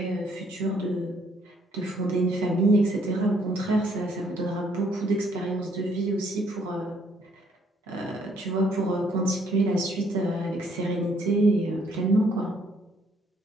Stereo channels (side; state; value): both; normal; correlation 0.67